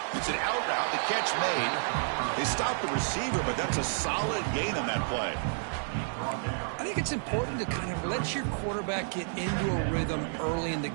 It's an out route, the catch made. They stopped the receiver, but that's a solid gain on that play. I think it's important to kind of let your quarterback get into a rhythm early in the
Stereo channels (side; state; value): left; silent; digital silence